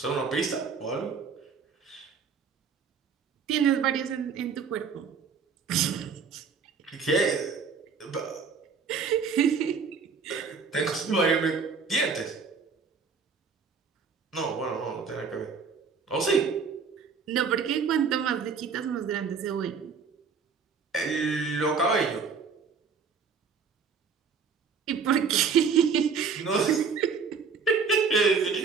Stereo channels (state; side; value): quieter; left; 5.5 dB